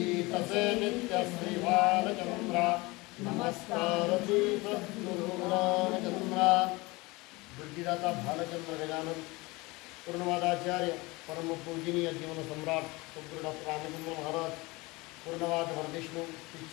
से नित्य श्री बालचंद्रा नमस्कार श्री सद्गुरु रामचंद्रा। बुद्धिदाता भालचंद्र गजानन पूर्णवादाचार्य परम पूजनीय जीवन सम्राट सद्गुरु डॉक्टर रामचंद्र महाराज पूर्णवाद वरविष्णु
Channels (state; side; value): quieter; right; 23.4 dB